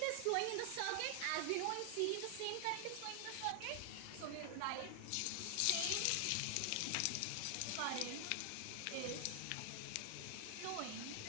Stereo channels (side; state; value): both; different; correlation 0.00